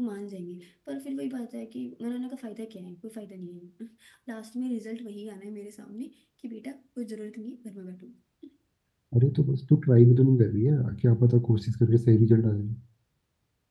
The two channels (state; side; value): identical; both; correlation 1.00